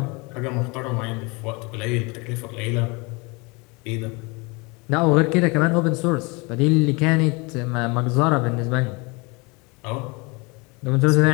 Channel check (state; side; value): quieter; right; 27.8 dB